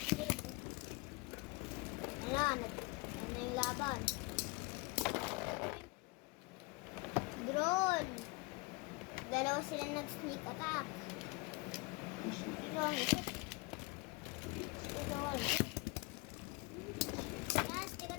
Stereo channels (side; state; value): right; quieter; 26.6 dB